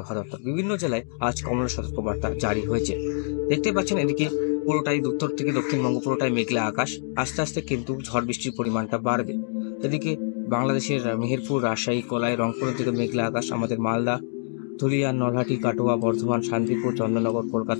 দপ্তর। বিভিন্ন জেলায় আজ কমলা সতর্কবার্তা জারি হয়েছে। দেখতে পাচ্ছেন এদিকে পুরোটাই উত্তর থেকে দক্ষিণবঙ্গ পুরোটাই মেঘলা আকাশ। আস্তে আস্তে কিন্তু ঝড় বৃষ্টির পরিমাণটা বাড়বে। এদিকে বাংলাদেশের মেহেরপুর, রাজশাহী, কলাই, রংপুরের দিকে মেঘলা আকাশ। আমাদের মালদা, ধুলিয়ান, নলহাটি, কাটোয়া, বর্ধমান, শান্তিপুর, চন্দননগর,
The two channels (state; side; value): silent; right; digital silence